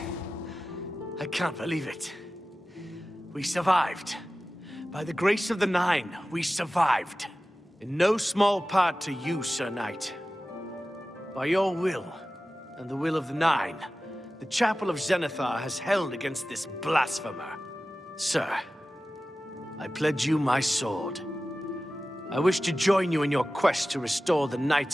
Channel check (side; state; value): both; normal; correlation 0.95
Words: I can't believe it. We survived. By the grace of the Nine, we survived. In no small part to you, Sir Knight. By your will, and the will of the Nine, the Chapel of Zenithar has held against this blasphemer. Sir, I pledge you my sword. I wish to join you in your quest to restore the